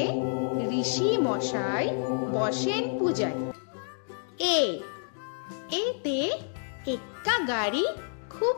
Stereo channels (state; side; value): silent; right; 59 dB below the other